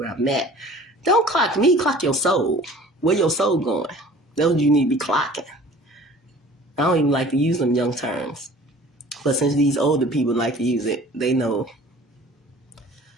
I'm at. Don't clock me, clock your soul. Where your soul going? That's what you need to be clocking. I don't even like to use them young terms. But since these older people like to use it, they know.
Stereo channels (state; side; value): normal; both; correlation 0.47